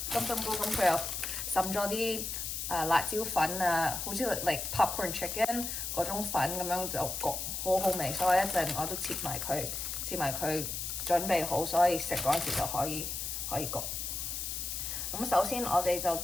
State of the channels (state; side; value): noise; left; hiss, 4 dB below the sound